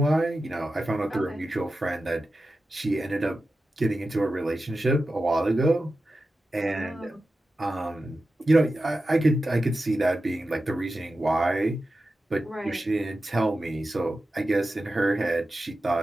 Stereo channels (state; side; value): normal; both; correlation 0.92